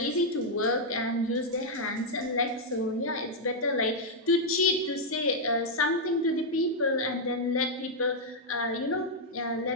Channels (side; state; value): both; normal; correlation -0.03